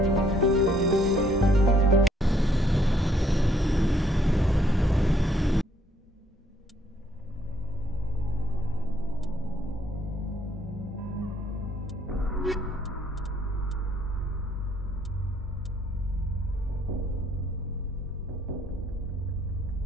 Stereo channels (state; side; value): normal; both; correlation 0.67